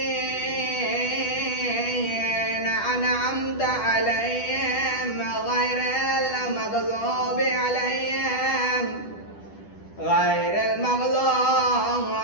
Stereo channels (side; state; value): right; late; 10 ms